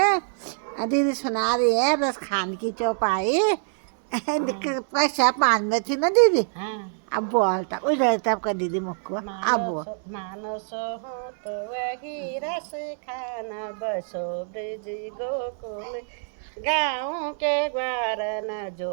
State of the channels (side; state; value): left; silent; digital silence